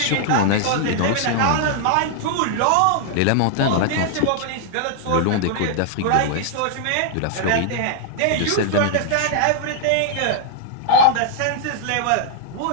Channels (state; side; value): different; both; correlation -0.01